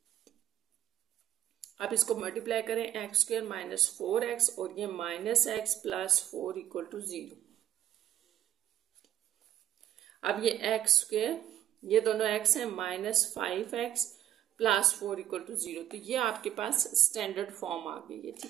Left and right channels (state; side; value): quieter; left; 11.9 dB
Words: अब इसको मल्टीप्लाई करें, x² - 4x, और ये -x + 4 = 0। अब ये x², ये दोनों x है, -5x + 4 = 0। तो ये आपके पास स्टैंडर्ड फॉर्म आ गई है,